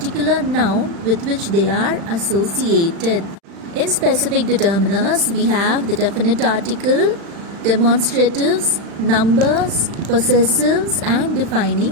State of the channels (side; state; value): left; late; 36 ms